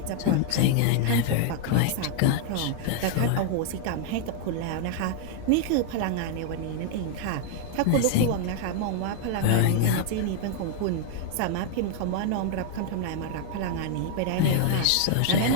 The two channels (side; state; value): both; different; correlation -0.01